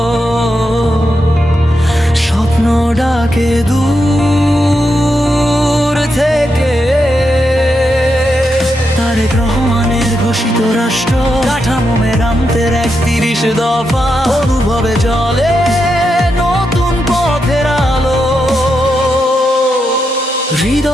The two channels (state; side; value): normal; both; correlation 0.85